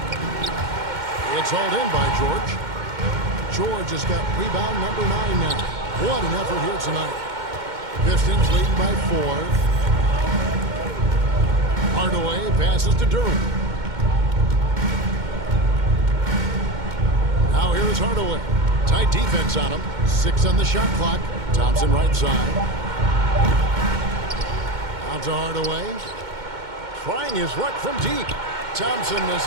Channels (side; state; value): left; late; 2.1 ms